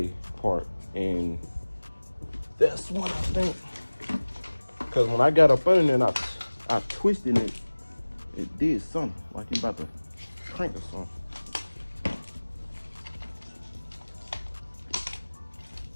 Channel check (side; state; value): both; inverted; correlation -1.00